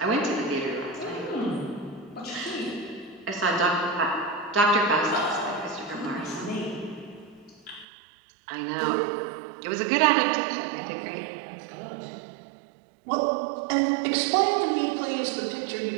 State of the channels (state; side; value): drops out; left; at 7.9 s